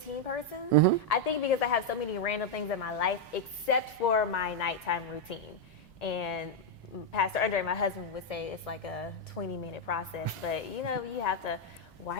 person. I think because I have so many random things in my life, except for my nighttime routine. And Pastor Andre, my husband, would say it's like a 20-minute process. But, you have to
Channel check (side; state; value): both; normal; correlation 0.00